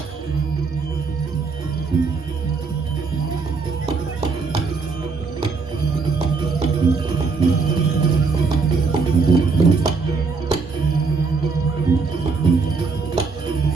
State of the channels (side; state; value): left; quieter; 4.6 dB